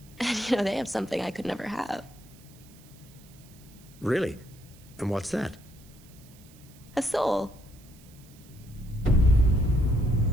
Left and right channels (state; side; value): noise; right; hiss, 25 dB below the sound